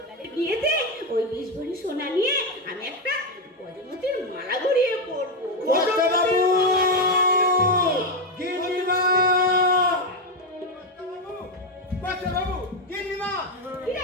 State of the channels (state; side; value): normal; both; correlation 0.07